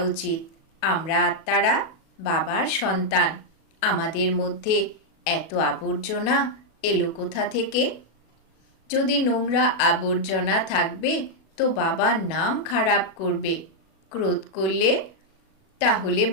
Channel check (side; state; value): right; late; 37 ms